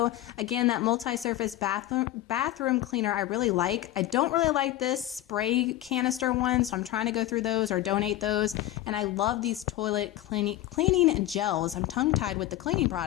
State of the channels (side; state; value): right; quieter; 14.6 dB